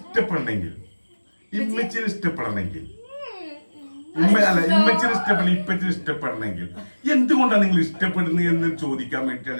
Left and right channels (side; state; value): both; inverted; correlation -1.00